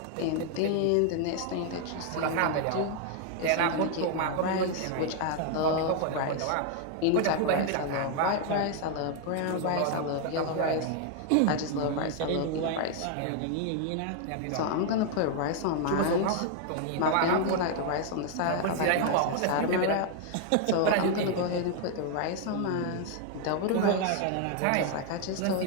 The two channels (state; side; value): different; both; correlation 0.00